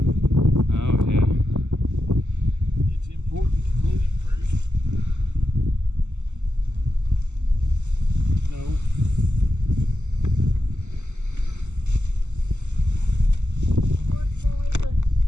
Oh yeah. It's important to clean it first. No.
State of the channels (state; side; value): late; left; 0.83 ms